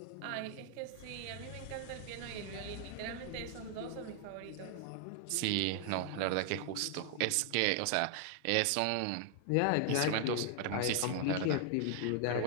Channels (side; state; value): both; different; correlation 0.00